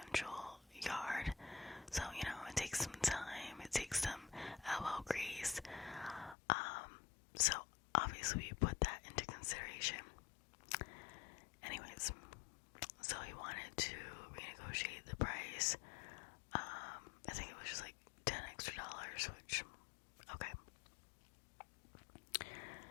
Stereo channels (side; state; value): right; drops out; at 6.4 s